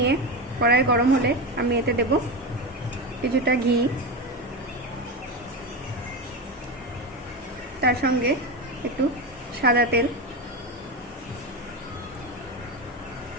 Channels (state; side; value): normal; both; correlation 0.18